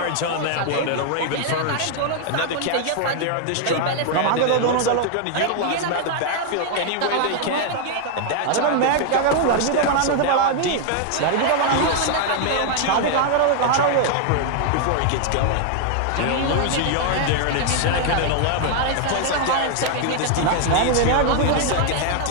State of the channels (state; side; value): different; both; correlation 0.00